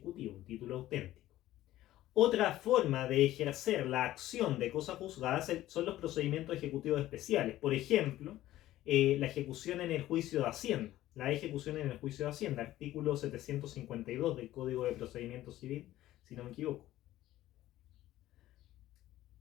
un título auténtico. Otra forma de ejercer la acción de cosa juzgada son los procedimientos ejecutivos especiales. Por ejemplo, la ejecución en el juicio de Hacienda. La ejecución en el juicio de Hacienda, artículo 752 del Código de Procedimiento Civil, si no me equivoco.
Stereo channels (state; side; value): quieter; right; 14.7 dB